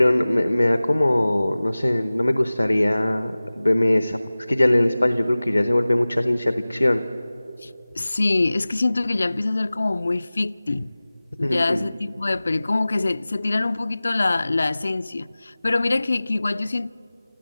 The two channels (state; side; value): inverted; both; correlation -0.98